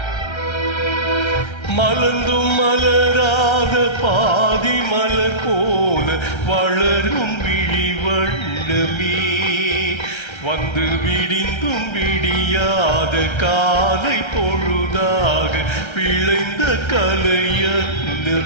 மலர்ந்தும் மலராத பாதி மலர் போல வளரும் விழி வண்ணமே, வந்து விடிந்தும் விடியாத காலை பொழுதாக விளைந்த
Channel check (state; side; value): late; right; 1.3 ms